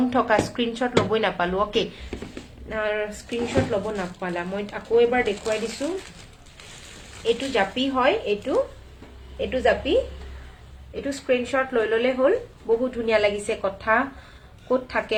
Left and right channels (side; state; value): both; identical; correlation 1.00